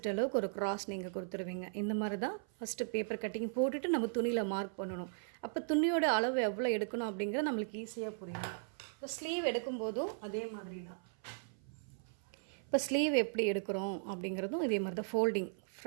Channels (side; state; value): left; silent; 53 dB below the other